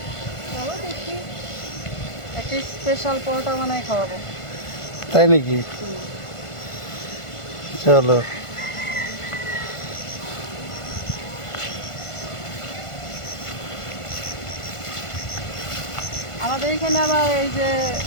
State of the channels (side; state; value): right; late; 1.5 ms